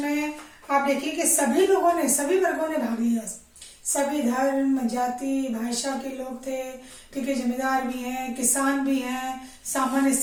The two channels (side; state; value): both; identical; correlation 1.00